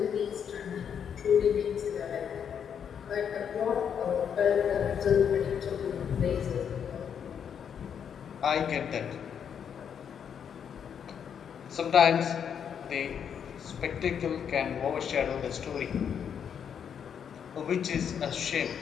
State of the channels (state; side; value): quieter; right; 7.9 dB